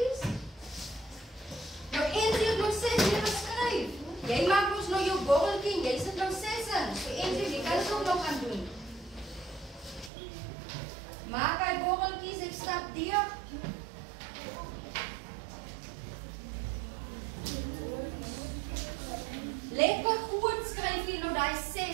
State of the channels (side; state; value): left; drops out; at 10.1 s